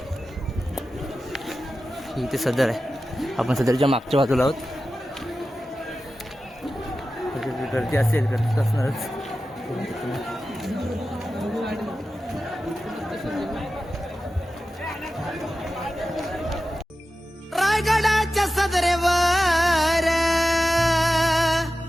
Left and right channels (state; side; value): normal; both; correlation 0.93